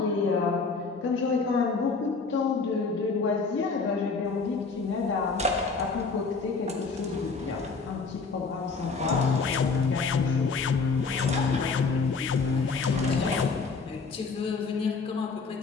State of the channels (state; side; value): quieter; right; 4.5 dB